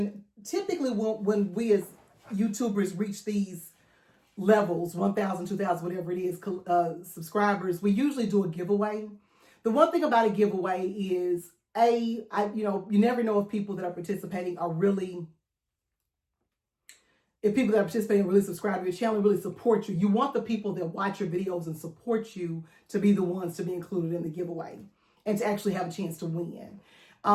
typically when we as YouTubers reach these levels, 1,000, 2,000, whatever it is, subscribers, we usually do a giveaway. The one thing about a giveaway is, you never know if people that are participating are really, really subscribe to your channel, really support you. You want the people that watch your videos and support you to be the ones to be included in the giveaway and to actually have a chance to win.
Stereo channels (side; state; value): both; identical; correlation 1.00